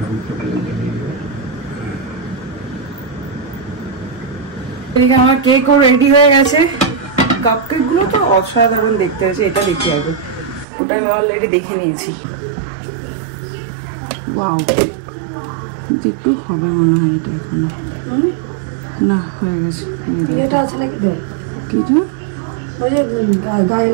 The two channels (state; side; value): drops out; left; at 10.7 s